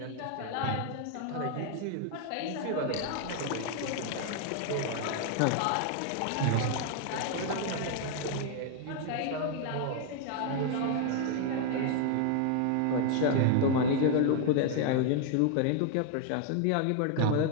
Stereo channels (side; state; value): both; different; correlation 0.00